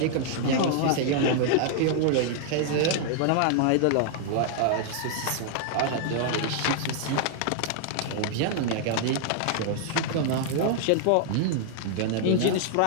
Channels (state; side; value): different; both; correlation 0.00